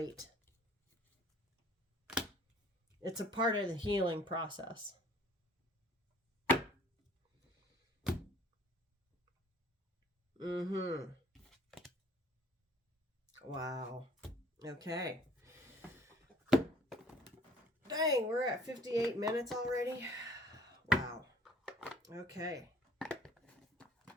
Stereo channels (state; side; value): normal; both; correlation 0.54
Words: It's a part of the healing process. Wow. Okay. Dang, we're at 58 minutes already. Wow. Okay.